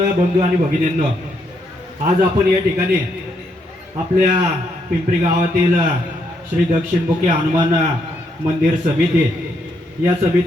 बंधू आणि भगिनींनो, आज आपण या ठिकाणी आपल्या पिंपरी गावातील श्री दक्षिणमुखी हनुमान मंदिर समिती या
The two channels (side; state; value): both; normal; correlation 0.76